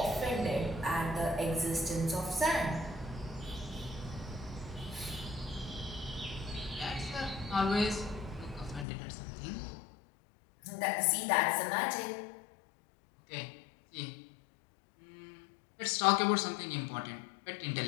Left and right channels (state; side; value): drops out; right; at 8.8 s